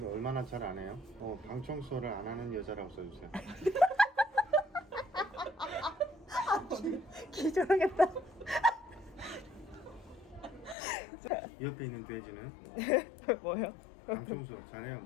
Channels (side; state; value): right; drops out; at 10.8 s